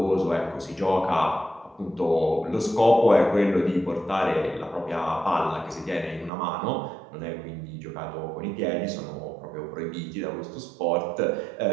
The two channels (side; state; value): left; drops out; at 6.3 s